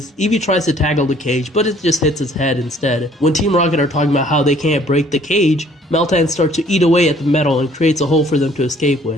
Eevee tries to tackle the cage, but it just hits his head instead. When Team Rocket are talking about how they can't break the cage, Meltan starts to eat away at the metal and creates a hole for them to escape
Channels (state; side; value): normal; both; correlation 0.58